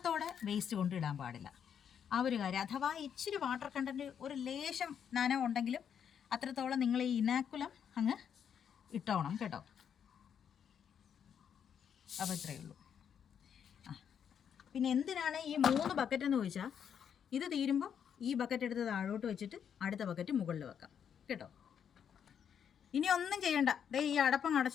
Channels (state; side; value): quieter; right; 8.1 dB